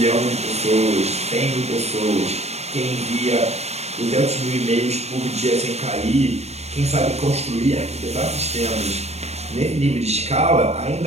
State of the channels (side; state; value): left; late; 0.31 ms